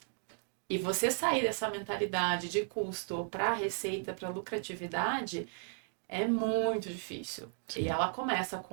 E você sair dessa mentalidade de custo para receita, para lucratividade, é muito difícil. E ela começa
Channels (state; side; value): silent; left; 54 dB below the other